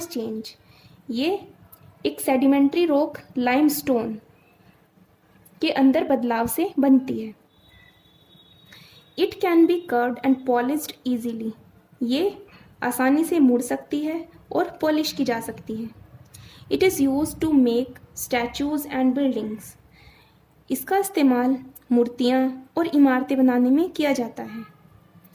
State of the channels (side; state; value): both; identical; correlation 1.00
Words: change. ये एक सेडिमेंट्री रॉक लाइमस्टोन के अंदर बदलाव से बनती है. It can be curved and polished easily. ये आसानी से मुड़ सकती है और पॉलिश की जा सकती है. It is use to make statues and buildings. इसका इस्तेमाल मूर्तियाँ और इमारतें बनाने में किया जाता है.